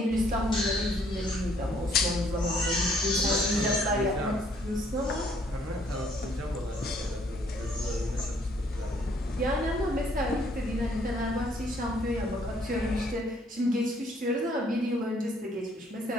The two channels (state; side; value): normal; both; correlation 0.65